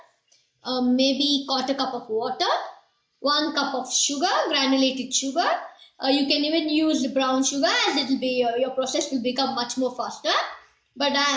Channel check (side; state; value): both; identical; correlation 1.00